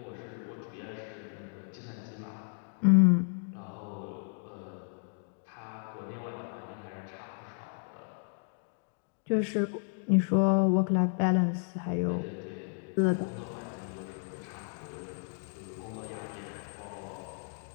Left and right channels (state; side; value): silent; right; 56 dB below the other